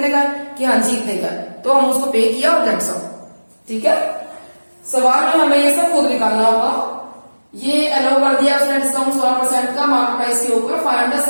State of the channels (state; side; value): inverted; both; correlation -1.00